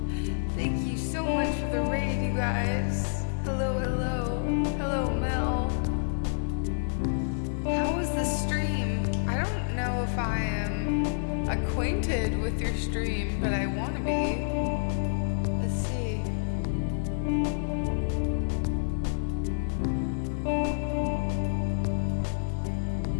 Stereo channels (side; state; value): right; silent; digital silence